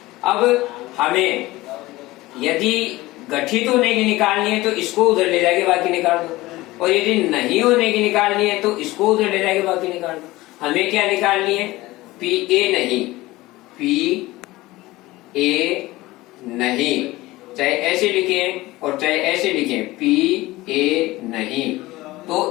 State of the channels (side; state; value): right; quieter; 19.0 dB